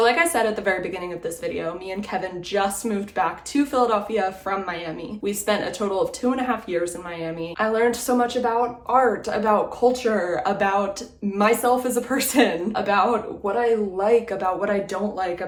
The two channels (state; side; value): identical; both; correlation 1.00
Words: like I said at the very beginning of this video, me and Kevin just moved back to Philadelphia from Miami. We spent a total of 2.5 years in Miami. I learned so much about art, about culture, about myself as a person, about what I like, about what I don't like,